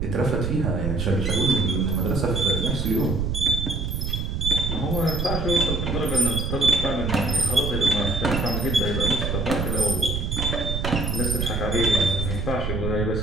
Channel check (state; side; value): noise; right; rumble, 2 dB below the sound